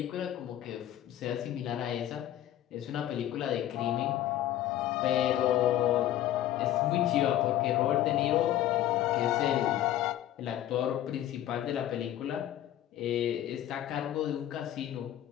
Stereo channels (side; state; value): right; quieter; 12.6 dB